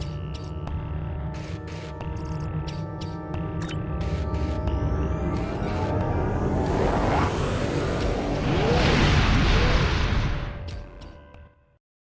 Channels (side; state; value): both; identical; correlation 1.00